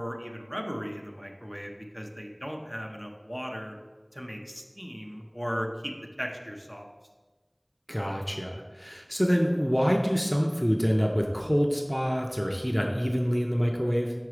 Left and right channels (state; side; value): identical; both; correlation 1.00